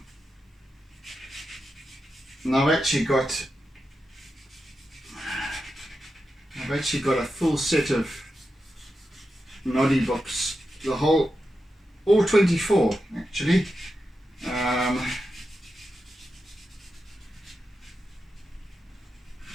And I've actually got a full set of Noddy books. All 24 actually.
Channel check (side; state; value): both; normal; correlation 0.89